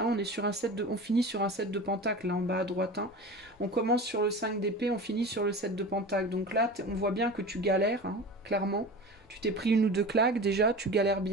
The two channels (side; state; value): both; normal; correlation 0.33